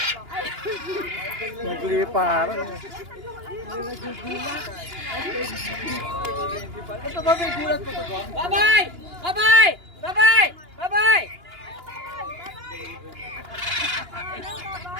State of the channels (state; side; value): late; left; 2.9 ms